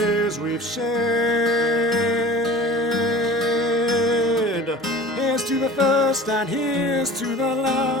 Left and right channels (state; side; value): normal; both; correlation 0.41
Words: we've shed. Here's to the first and here's to the